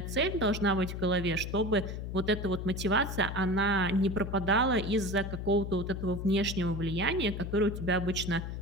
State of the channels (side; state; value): left; noise; hum, 6 dB below the sound